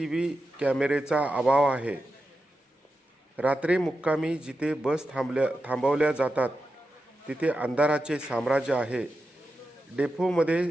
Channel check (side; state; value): both; normal; correlation 0.90